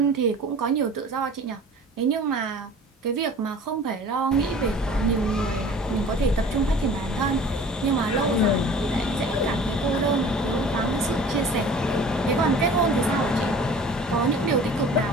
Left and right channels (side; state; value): both; normal; correlation 0.45